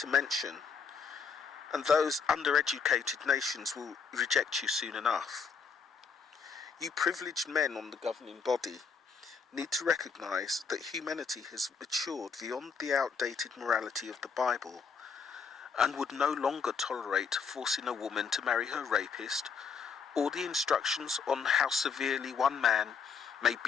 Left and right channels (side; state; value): right; quieter; 5.8 dB